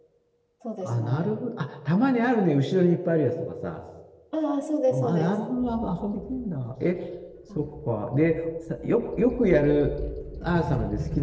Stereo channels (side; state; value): both; identical; correlation 1.00